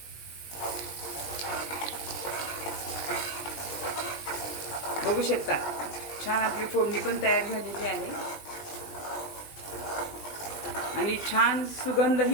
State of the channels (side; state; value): right; late; 20 ms